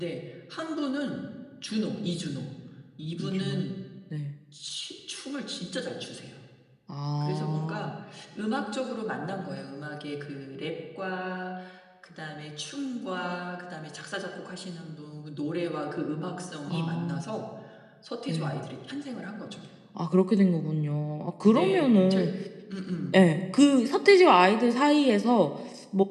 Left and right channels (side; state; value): both; identical; correlation 1.00